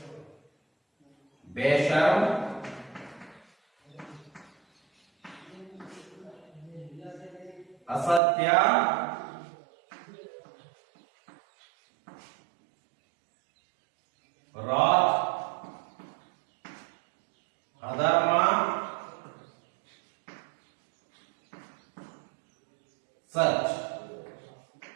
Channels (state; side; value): drops out; left; at 8.2 s